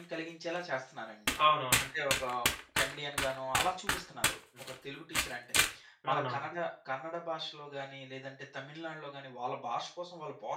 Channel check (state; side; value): identical; both; correlation 1.00